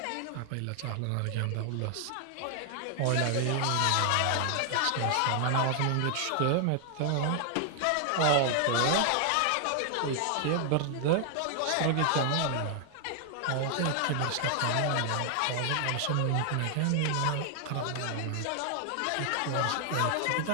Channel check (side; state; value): both; different; correlation 0.00